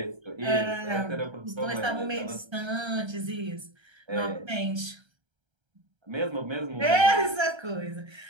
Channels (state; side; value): late; left; 1.3 ms